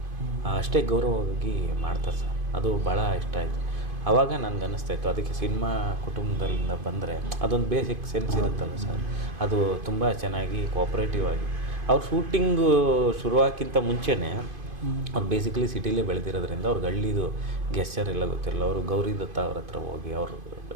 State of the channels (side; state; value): left; late; 2.5 ms